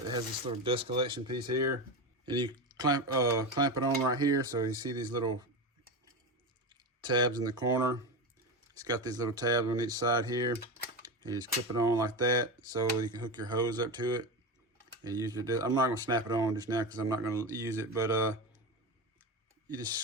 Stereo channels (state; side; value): normal; both; correlation 0.20